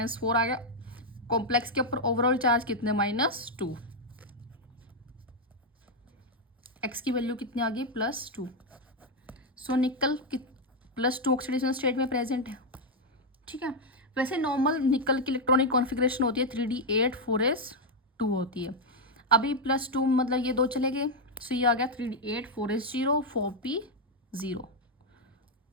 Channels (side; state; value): both; normal; correlation 0.02